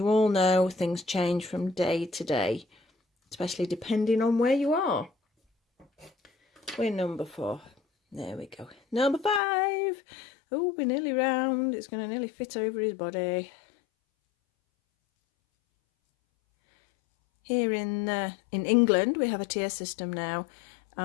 all know, things change from day to day, especially depending on where you are. We're number 4. There we go. Number 5. Oh, we're nearly round. It's going to nearly fit over his body. Here in England, we have a tier system now,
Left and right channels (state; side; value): drops out; right; at 9.4 s